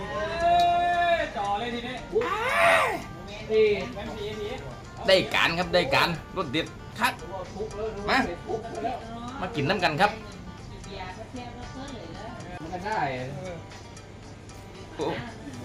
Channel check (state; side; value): identical; both; correlation 1.00